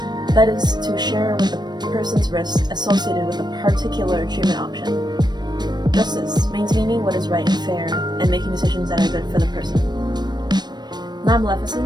That is to share with the person's risks associated with a particular treatment option. Justice, maintaining what is right and fair, and making decisions that are good for the person.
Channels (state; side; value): late; left; 0.21 ms